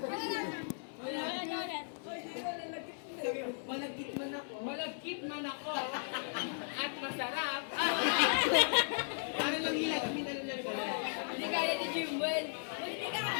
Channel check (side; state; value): right; silent; digital silence